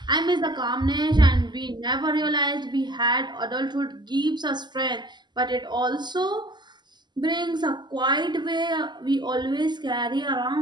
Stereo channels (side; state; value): left; late; 0.21 ms